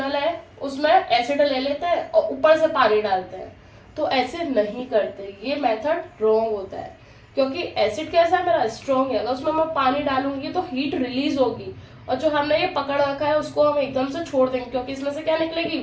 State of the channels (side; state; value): both; identical; correlation 1.00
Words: है उसमें एसिड ले लेते हैं और ऊपर से पानी डालते हैं, तो ऐसे नहीं करते, ये मेथड रॉन्ग होता है, क्योंकि एसिड कैसा है मेरा, स्ट्रॉन्ग है, अगर उसमें मैं पानी डालूंगी तो हीट रिलीज होगी, और जो हमने ये पकड़ रखा है उसको हम एकदम से छोड़ देंगे, क्योंकि इसमें से क्या निकलेगी,